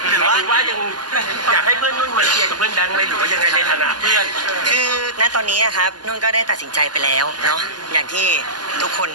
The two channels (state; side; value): late; left; 0.70 ms